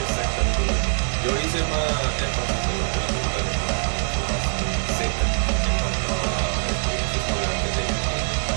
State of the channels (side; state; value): left; silent; digital silence